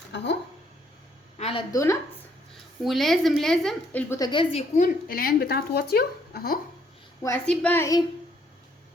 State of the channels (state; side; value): normal; both; correlation 0.68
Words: اهو على الدوناتس. ولازم البوتاجاز يكون العين بتاعته واطيه اهو، واسيب بقى ايه